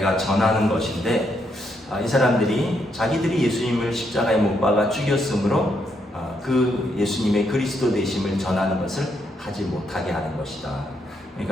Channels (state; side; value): normal; both; correlation 0.77